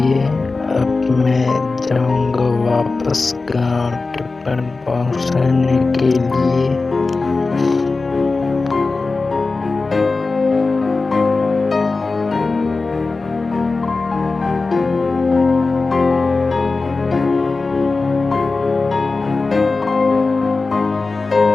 अब मैं जाऊंगा वापस गाँव टिफिन पहुँचाने के लिए।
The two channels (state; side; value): quieter; right; 3.8 dB